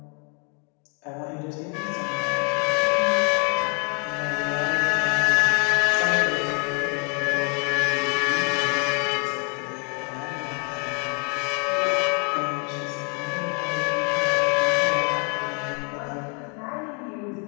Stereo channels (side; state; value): right; quieter; 35.2 dB